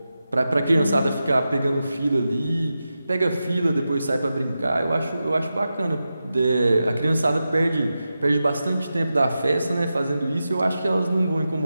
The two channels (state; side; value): inverted; both; correlation -0.91